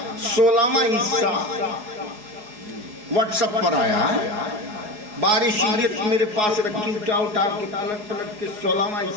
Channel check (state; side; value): late; left; 4.8 ms